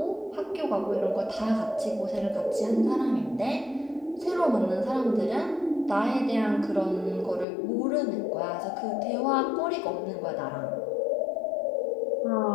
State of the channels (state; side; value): drops out; right; at 7.5 s